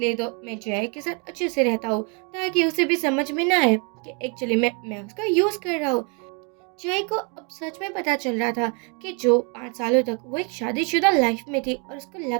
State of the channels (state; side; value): quieter; left; 35.3 dB